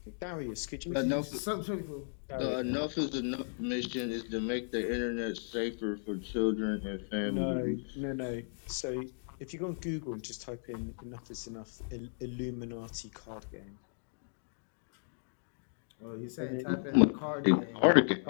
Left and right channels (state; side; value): silent; right; digital silence